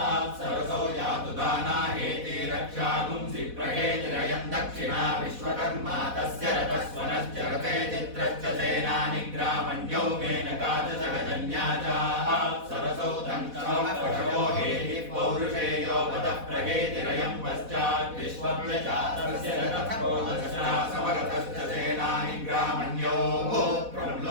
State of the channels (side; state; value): left; late; 4.1 ms